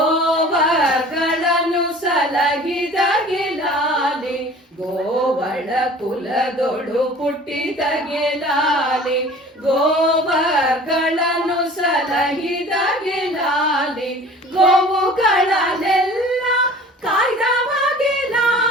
ಸಲಹಿದ ಗೆಲಾಲಿ ಗೋವಳ ಕುಲದೊಳು ಪುಟ್ಟಿದ ಗೆಲಾಲಿ ಗೋವಗಳನ್ನು ಸಲಹಿದ ಗೆಲಾಲಿ ಗೋವುಗಳನ್ನೆಲ್ಲ ಕಾಯ್ದವ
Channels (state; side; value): normal; both; correlation 0.45